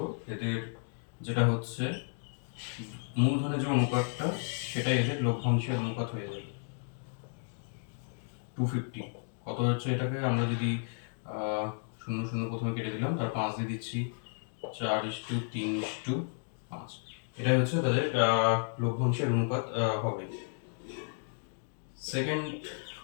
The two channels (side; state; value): right; silent; 56 dB below the other